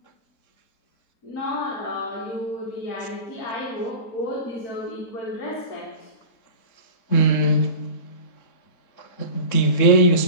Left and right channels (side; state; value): right; late; 3.7 ms